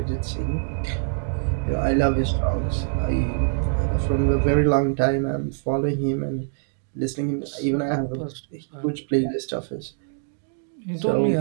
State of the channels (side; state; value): left; silent; digital silence